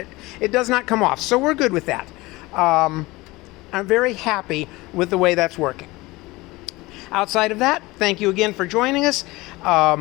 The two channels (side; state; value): right; quieter; 21.1 dB